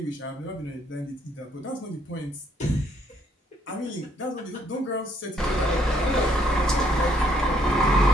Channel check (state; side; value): normal; both; correlation 0.69